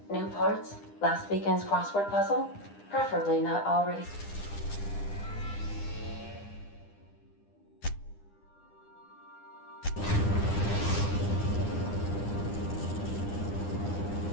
New parts? Last weekend's crossword puzzle? Preferably not already...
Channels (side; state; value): right; late; 9.9 ms